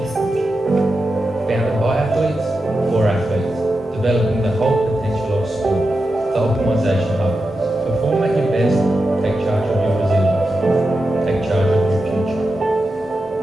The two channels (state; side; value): normal; both; correlation 0.89